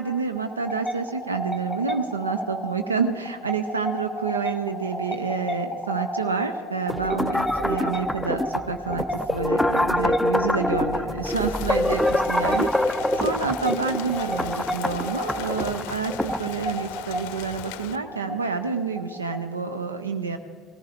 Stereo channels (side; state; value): both; normal; correlation 0.31